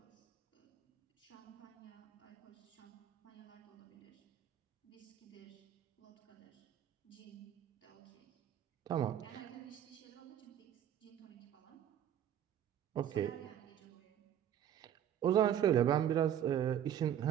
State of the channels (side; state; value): left; quieter; 10.2 dB